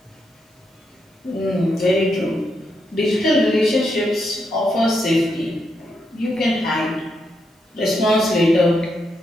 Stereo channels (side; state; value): both; normal; correlation 0.81